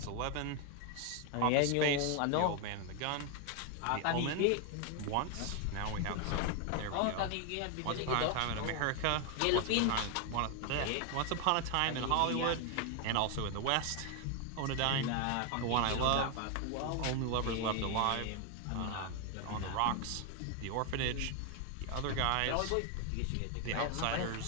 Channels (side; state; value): both; different; correlation 0.01